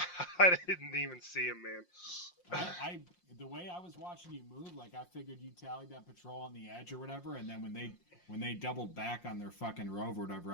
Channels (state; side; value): late; right; 5.6 ms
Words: I didn't even see him, man. The way I was watching you move, like I figured you tallied that patrol on the edge or whatever, and then when they doubled back on their fucking rove or whatever,